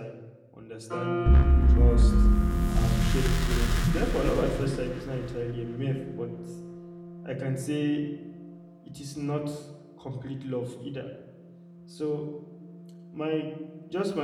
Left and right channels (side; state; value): both; identical; correlation 1.00